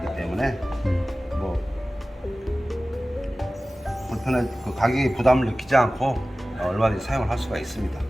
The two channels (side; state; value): both; normal; correlation 0.97